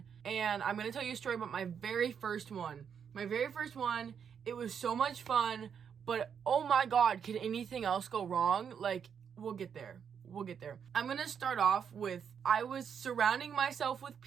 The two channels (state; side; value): quieter; left; 7.4 dB